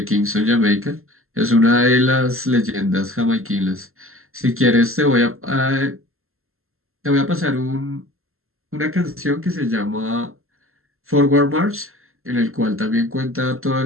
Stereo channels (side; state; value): left; late; 0.62 ms